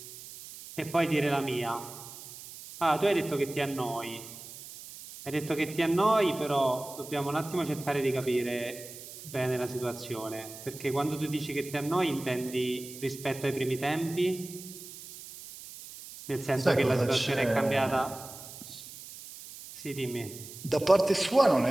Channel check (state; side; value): noise; right; hiss, 14 dB below the sound